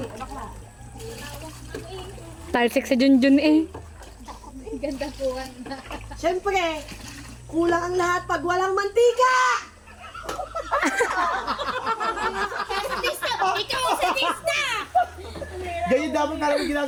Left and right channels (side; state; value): both; identical; correlation 1.00